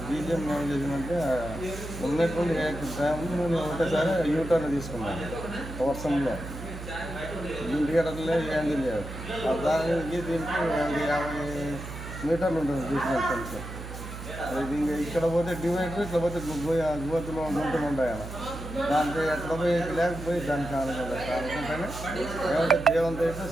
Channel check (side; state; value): right; noise; hum, 10 dB below the sound